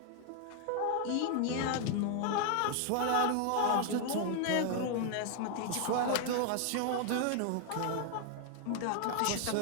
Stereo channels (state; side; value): different; both; correlation 0.00